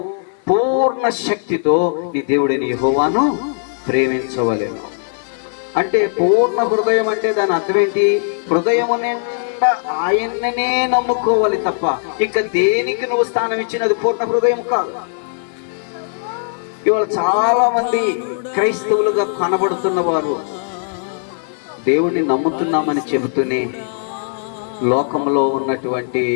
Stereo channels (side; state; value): right; silent; digital silence